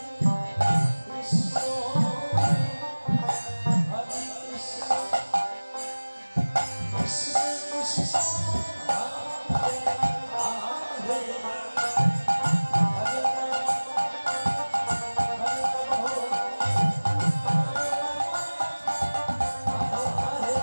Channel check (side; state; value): both; inverted; correlation -1.00